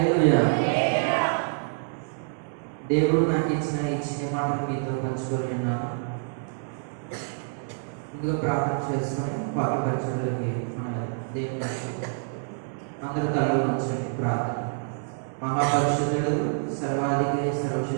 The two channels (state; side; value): silent; left; 60 dB below the other